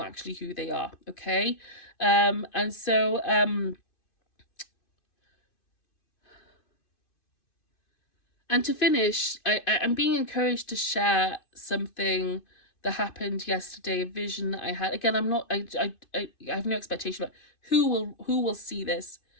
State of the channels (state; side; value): late; right; 2.5 ms